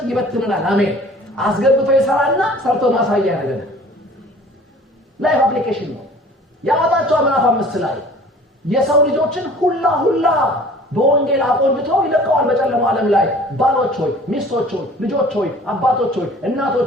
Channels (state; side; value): normal; both; correlation 0.48